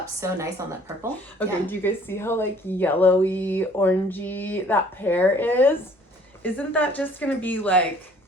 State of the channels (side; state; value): both; normal; correlation 0.56